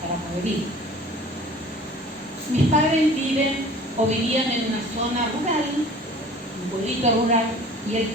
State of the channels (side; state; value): both; normal; correlation 0.45